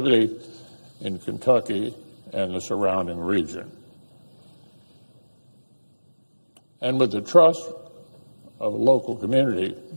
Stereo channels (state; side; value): inverted; both; correlation -1.00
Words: in Kentucky and the surrounding region. And with the trust of a local community,